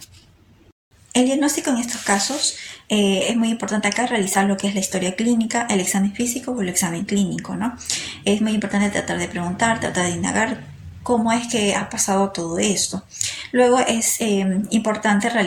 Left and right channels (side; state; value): both; identical; correlation 1.00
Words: El diagnóstico en estos casos Es muy importante acá realizar lo que es la historia clínica, el examen físico o el examen clínico, ¿no? Es muy importante tratar de preguntar, tratar de indagar cómo es que ha pasado todo esto. Luego es importante